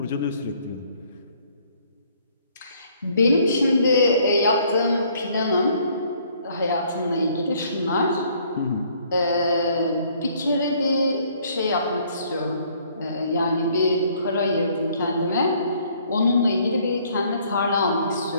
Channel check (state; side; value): inverted; both; correlation -0.62